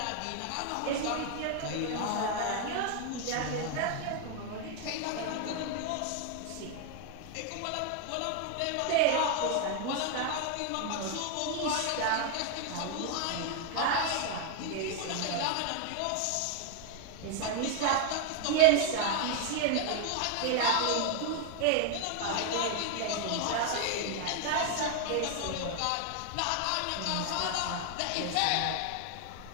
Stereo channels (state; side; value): different; both; correlation 0.00